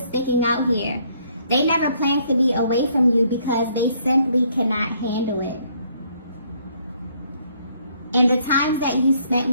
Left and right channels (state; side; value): inverted; both; correlation -0.67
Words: sticking out here. They never plan to be away from you because they simply cannot handle it. In the times that you spent